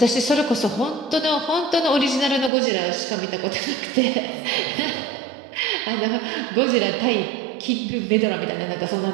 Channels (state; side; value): drops out; left; at 2.5 s